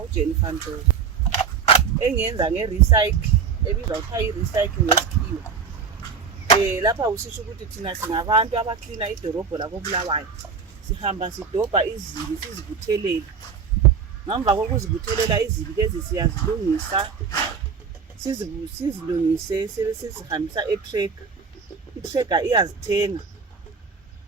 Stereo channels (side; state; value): left; quieter; 6.0 dB